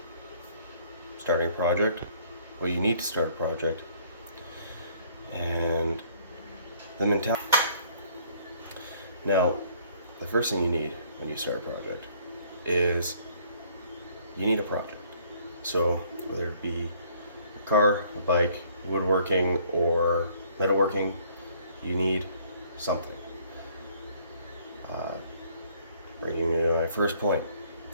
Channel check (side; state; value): both; inverted; correlation -0.60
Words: starting a project, what you need to start a project, and the mentality. Now, the first thing you need when you start a project is you need a project. So whether it be a car, a bike, woodworking, or metalworking, you need something. Bringing me to my first point,